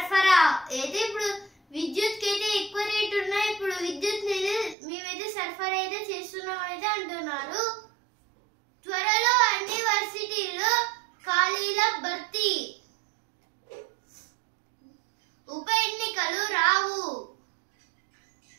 అయితే ఇప్పుడు విద్యుత్ కి అయితే ఎక్కువ రేటు ఉన్నాయి, ఇప్పుడు విద్యుత్ మేమైతే సరఫరా అయితే చేస్తున్నాం అయితే అంటున్నారు. త్వరలో అన్ని వర్సిటీల్లో ఖాళీల భర్తీ. ఉప ఎన్నికలు రావు,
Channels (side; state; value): left; drops out; at 4.8 s